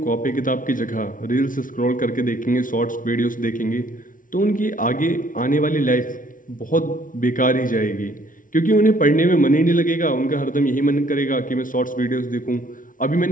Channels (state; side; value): late; right; 0.38 ms